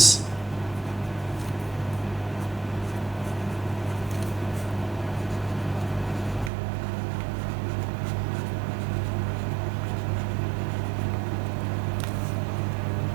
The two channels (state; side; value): drops out; left; at 6.5 s